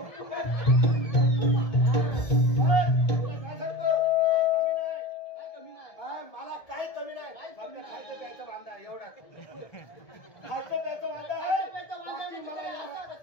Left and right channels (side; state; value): right; late; 1.7 ms